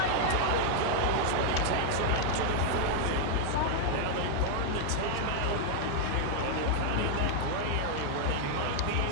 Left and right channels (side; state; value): both; different; correlation 0.00